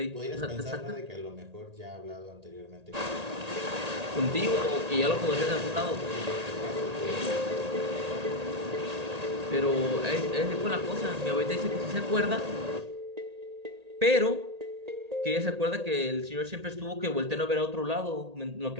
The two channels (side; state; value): left; late; 1.8 ms